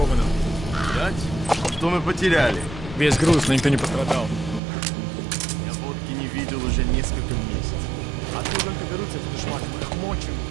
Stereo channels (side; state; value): left; drops out; at 4.6 s